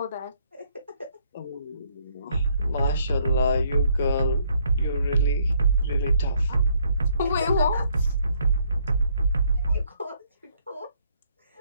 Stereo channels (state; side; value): inverted; both; correlation -0.68